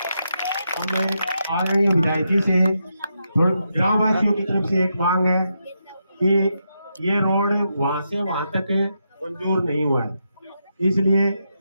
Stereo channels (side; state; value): both; inverted; correlation -0.84